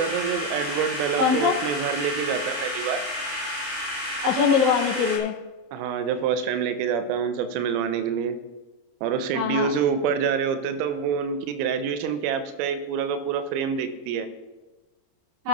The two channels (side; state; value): left; late; 29 ms